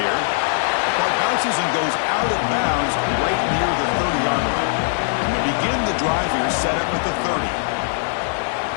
The punt bounces and goes out of bounds right near the 30-yard line. And they begin the drive here, set up at the 30.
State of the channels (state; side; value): silent; right; digital silence